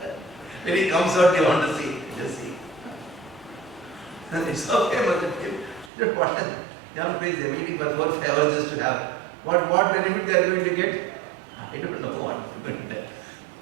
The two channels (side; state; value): left; drops out; at 5.9 s